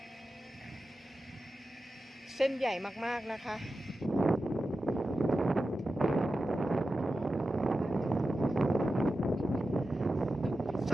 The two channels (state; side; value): normal; both; correlation 0.92